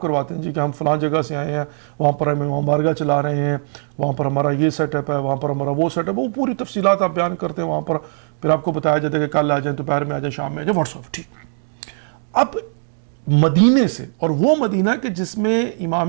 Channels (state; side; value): silent; left; digital silence